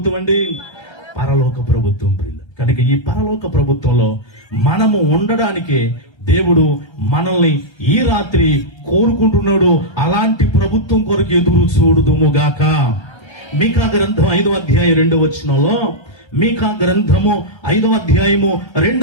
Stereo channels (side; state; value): right; late; 1.3 ms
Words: అండి? పరలోక ప్రభుత్వం ప్రియులు. కనుక ఈ పరలోక ప్రభుత్వంలో మనము ఉండడానికి దేవుడు మనల్ని ఈ రాత్రి కోరుకుంటున్నాడు. అలాంటి ప్రభుత్వం కొరకు ఎదురు చూడుదుముగాక. మీకా గ్రంథం 5వ అధ్యాయం 2వ వచనంలో, మీకా గ్రంథము 5వ అధ్యాయము